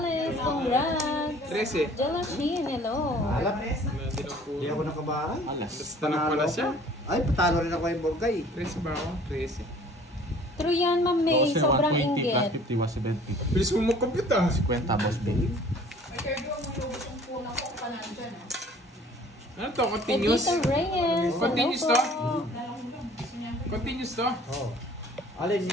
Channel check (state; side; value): normal; both; correlation 0.51